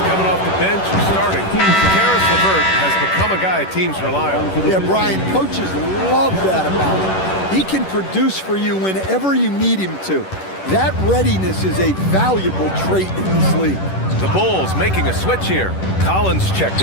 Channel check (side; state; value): right; late; 10 ms